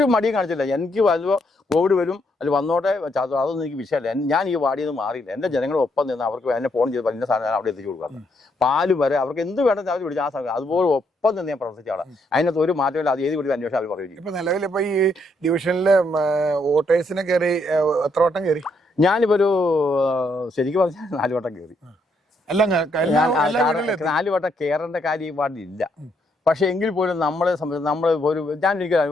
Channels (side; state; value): both; normal; correlation 0.74